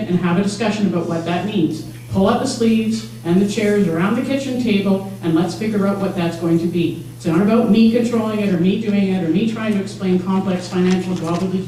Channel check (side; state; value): both; identical; correlation 1.00